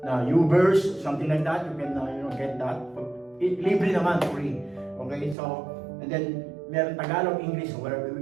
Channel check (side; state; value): left; drops out; at 5.4 s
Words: YouVerse, something like that, you can get that. Libre naman, free. Okay, so, and then meron Tagalog, English, whatever.